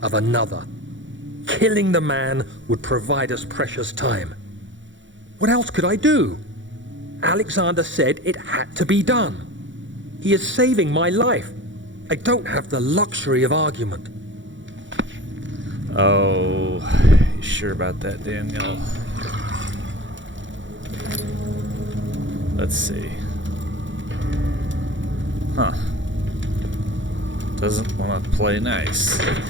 of another. Killing the man would provide us precious time. What else could I do? Alexander said it had to be done. He is saving my life. I don't have the luxury of argument. Oh, you sure about that, Daniel? Let's see. Huh. Doesn't want to play nice.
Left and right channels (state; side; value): late; left; 0.55 ms